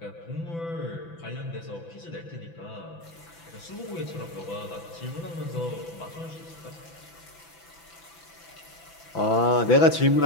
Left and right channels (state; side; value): late; right; 6.0 ms